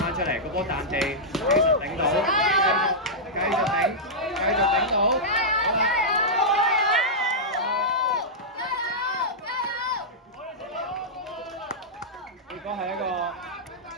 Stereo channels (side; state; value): both; normal; correlation -0.10